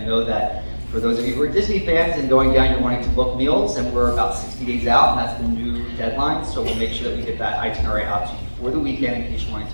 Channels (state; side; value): inverted; both; correlation -1.00